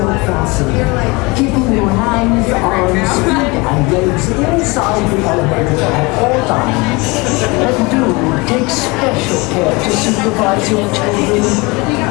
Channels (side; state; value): right; quieter; 25.5 dB